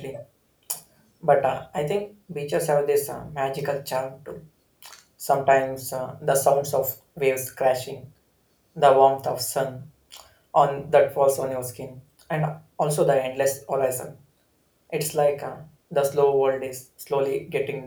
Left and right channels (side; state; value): both; identical; correlation 1.00